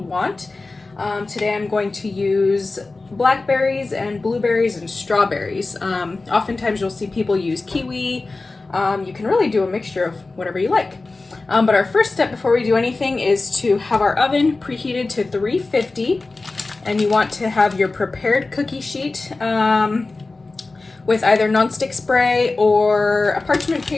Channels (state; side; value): quieter; right; 3.5 dB